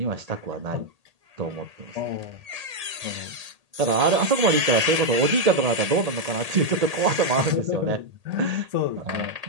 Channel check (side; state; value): left; late; 1.8 ms